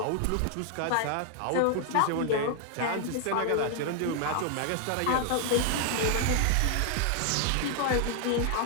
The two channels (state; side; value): different; both; correlation 0.00